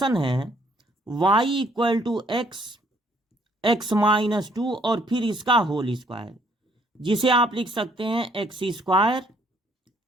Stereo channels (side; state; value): both; normal; correlation 0.65